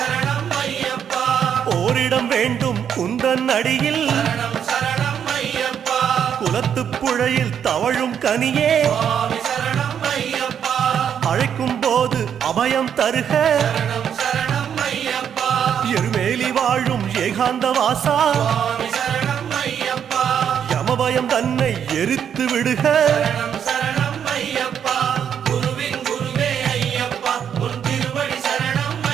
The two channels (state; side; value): quieter; left; 8.4 dB